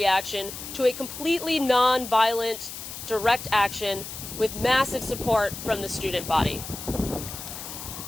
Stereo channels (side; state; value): left; noise; hiss, 10 dB below the sound